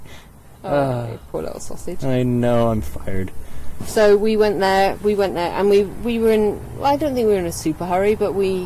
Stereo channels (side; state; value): both; identical; correlation 1.00